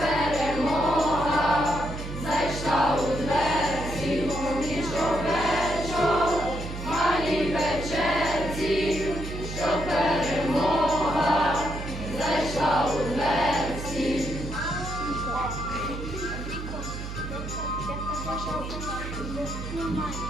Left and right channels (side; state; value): right; noise; hum, 7 dB below the sound